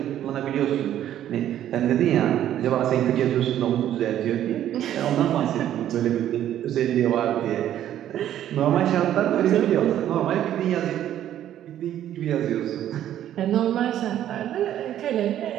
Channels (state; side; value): quieter; left; 11.5 dB